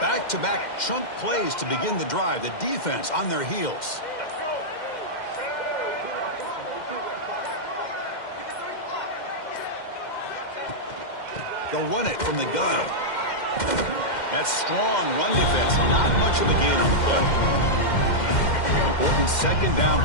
chunk plays to begin the drive. The defense on their heels. They'll run it from the gun. That's strong run defense. Not much of a gain on the play. Important second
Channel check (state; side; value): late; right; 2.1 ms